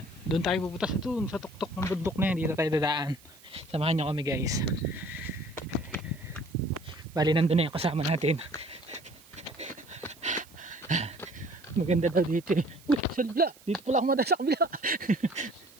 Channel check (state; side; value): noise; right; hiss, 24 dB below the sound